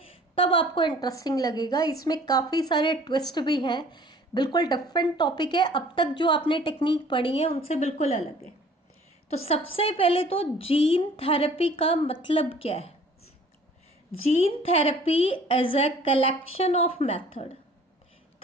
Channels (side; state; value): both; normal; correlation 0.52